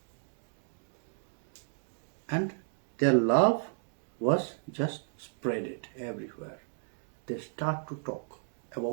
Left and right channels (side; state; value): left; silent; digital silence